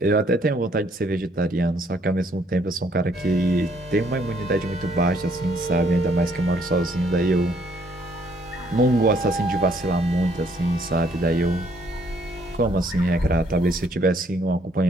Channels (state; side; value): normal; both; correlation 0.66